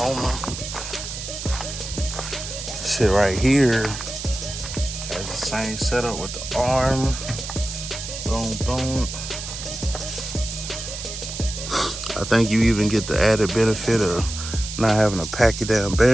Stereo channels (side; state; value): right; noise; hiss, 8 dB below the sound